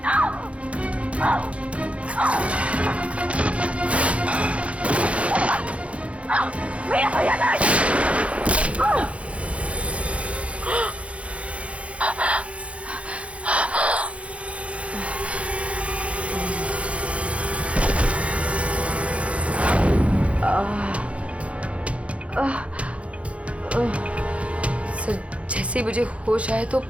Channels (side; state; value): left; late; 0.063 ms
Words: सर जैसे मुझे होश आया तो